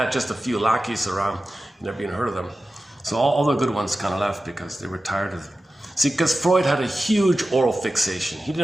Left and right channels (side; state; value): both; normal; correlation 0.94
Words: just a few lackeys around. You never even heard of them. So all the good ones kind of left because they were tired of it. See, because Freud had a huge oral fixation. He